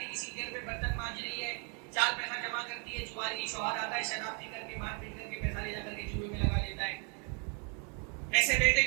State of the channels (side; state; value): left; quieter; 36.7 dB